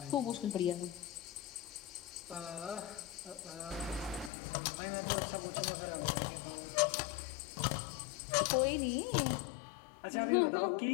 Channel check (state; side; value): drops out; right; at 4.3 s